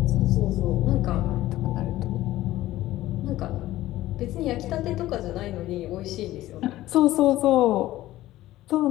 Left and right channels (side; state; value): right; quieter; 15.5 dB